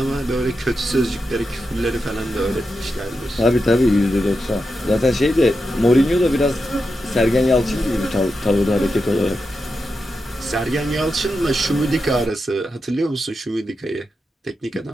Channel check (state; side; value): normal; both; correlation 0.88